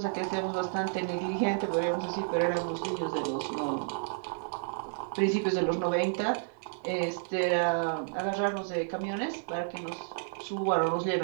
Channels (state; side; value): silent; left; digital silence